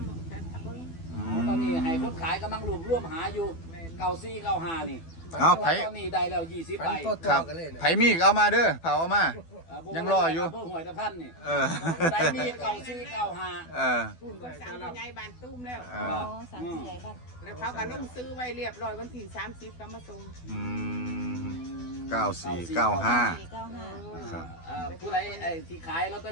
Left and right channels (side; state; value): right; late; 12 ms